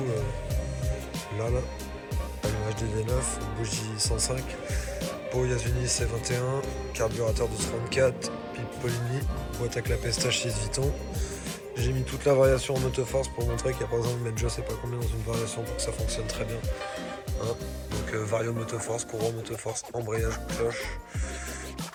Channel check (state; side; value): identical; both; correlation 1.00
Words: là, allumage DD9, bougie 105, pot Yasuni C21, carburateur de 34, pipe Polini, boîte à clapet Stage 6 Vuitton. J'ai mis toute la variation en autoforce pour montrer qu'il n'y a pas besoin de mettre je sais pas combien dans une variation pour que ça fonctionne très bien. Hein. Donc vario motoforce, courant motoforce, embrayage, cloche.